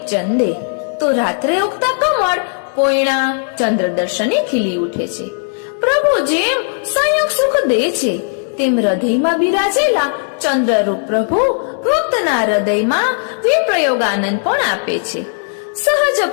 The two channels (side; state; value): right; silent; digital silence